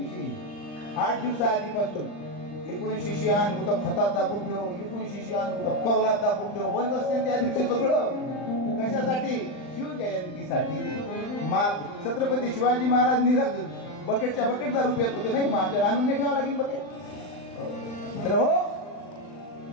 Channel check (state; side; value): late; right; 39 ms